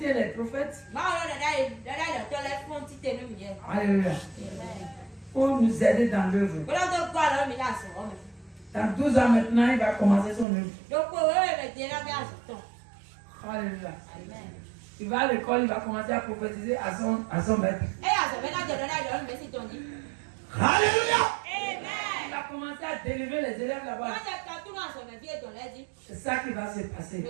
les prophètes. Alléluia. Pour nous aider dans l'œuvre. Dans 12 ans maintenant, il va commencer son œuvre. Alléluia. Il va à l'école, il va commencer à prophétiser à son maître. Alléluia. Il va commencer à délivrer les élèves là-bas. C'est ça qui va se passer.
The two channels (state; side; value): drops out; left; at 10.5 s